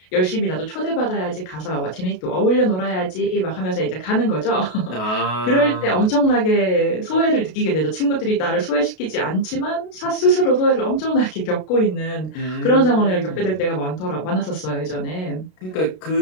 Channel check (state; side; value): late; right; 32 ms